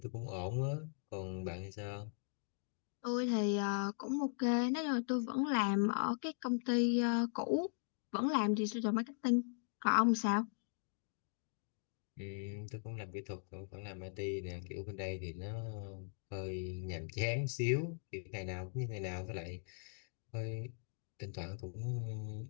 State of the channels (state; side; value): silent; right; digital silence